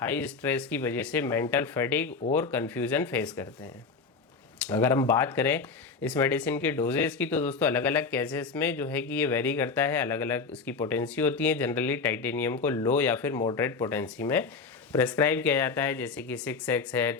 स्ट्रेस की वजह से मेंटल फैटिग और कन्फ्यूज़न फेस करते हैं। अगर हम बात करें इस मेडिसिन के डोजेस की, तो दोस्तों अलग अलग केसेस में जो है कि ये वेरी करता है, अलग अलग इसकी पोटेंसी होती है। जनरली टाइटेनियम को लो या फिर मॉडरेट पोटेंसी में प्रेस्क्राइब किया जाता है, जैसे कि 6x है,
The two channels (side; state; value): right; quieter; 4.7 dB